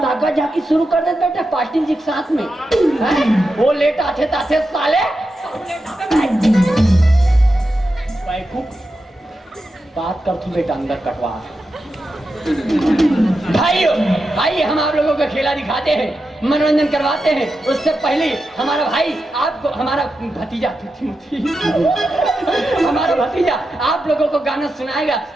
ताका जाके शुरू कर दे बेटा पार्टी जी के साथ में। वो लेट आते साले बात कर तू बेटा अंदर कटवा। भाई हम आप लोगों का खेला दिखाते हैं मनोरंजन करवाते हैं। उससे पहले हमारा भाई आपको हमारा भतीजा हमारा भतीजा आप लोगों को गाना सुनाएगा।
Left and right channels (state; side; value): normal; both; correlation 0.89